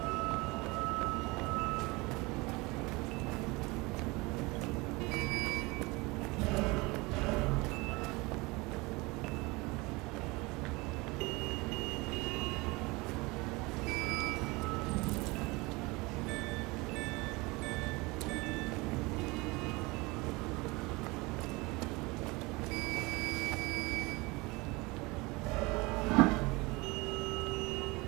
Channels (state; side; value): quieter; left; 24.3 dB